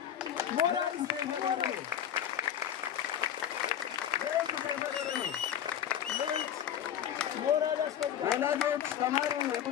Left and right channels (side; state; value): right; quieter; 9.9 dB